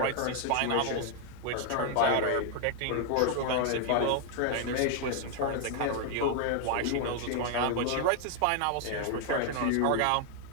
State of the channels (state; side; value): different; both; correlation 0.00